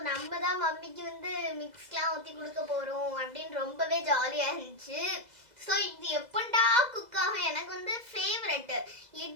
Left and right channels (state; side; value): late; left; 2.0 ms